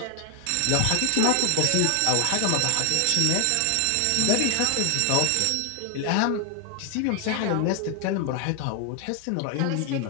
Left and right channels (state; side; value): different; both; correlation 0.00